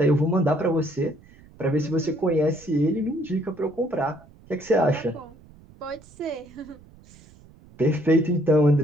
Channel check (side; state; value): right; noise; rumble, 24 dB below the sound